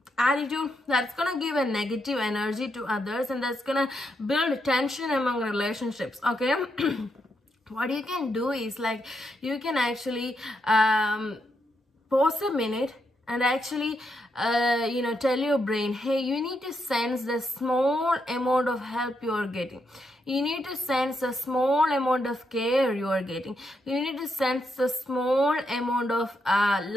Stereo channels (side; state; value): both; normal; correlation 0.80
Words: attitude that's gonna give a negative energy to others, and that's gonna build tension among relationships. Okay. What you can do is like you can actually pause a minute and actually tell your brain, hey, you need to sense the small amount of help you are getting. You need to sense the small amount of care you are getting. You need to sense the small amount of